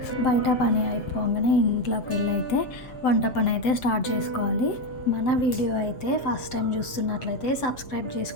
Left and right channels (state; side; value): late; right; 7.7 ms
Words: బయట పని అయిపోగానే ఇంట్లోకి వెళ్ళి అయితే వంట పని అయితే స్టార్ట్ చేసుకోవాలి. మన వీడియో అయితే ఫస్ట్ టైం చూస్తున్నట్లయితే సబ్స్క్రైబ్